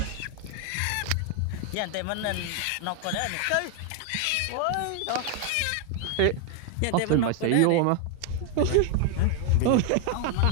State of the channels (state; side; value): different; both; correlation 0.01